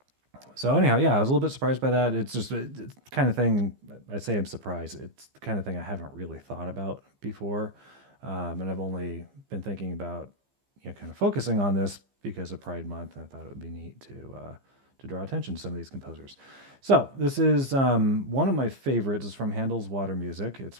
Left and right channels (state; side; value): late; left; 15 ms